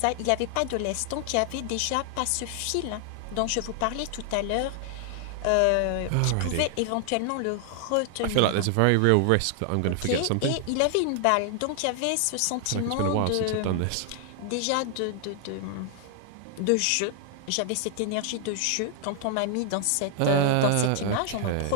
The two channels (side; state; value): both; different; correlation 0.00